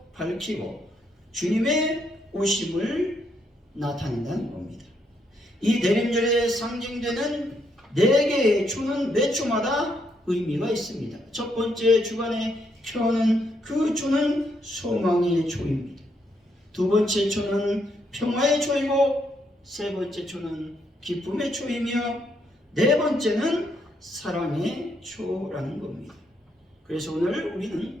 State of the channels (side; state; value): both; normal; correlation 0.76